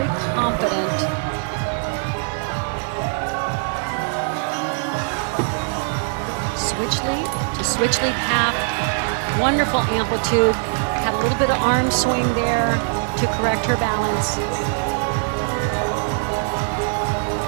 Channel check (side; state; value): left; silent; 64 dB below the other